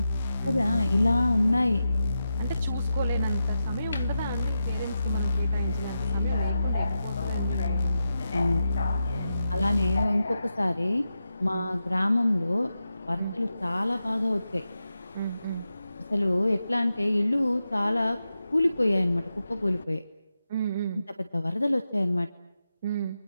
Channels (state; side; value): inverted; both; correlation -0.90